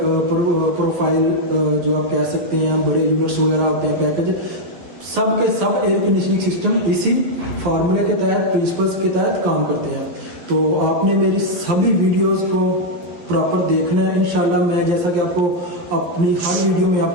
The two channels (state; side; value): late; left; 12 ms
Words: प्रोफाइल जो आप कह सकते हैं, बड़े यूनिट्स वगैरह होते हैं, पैकेज, सब के सब एयर कंडीशनिंग सिस्टम इसी फार्मूले के तहत, प्रिंसिपल्स के तहत काम करते हैं। तो आपने मेरी सभी वीडियोस को प्रॉपर देखना है। इंशाल्लाह मैं जैसा कि आपको अपनी हर वीडियो में